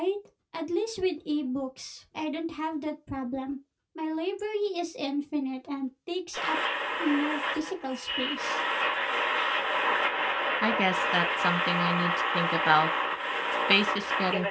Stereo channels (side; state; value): both; identical; correlation 1.00